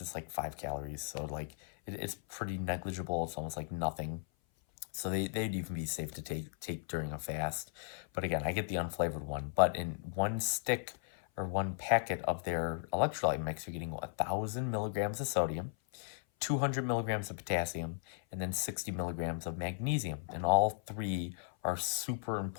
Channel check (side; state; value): right; silent; 54 dB below the other